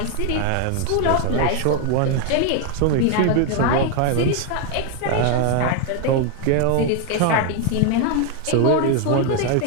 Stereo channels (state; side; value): different; both; correlation 0.01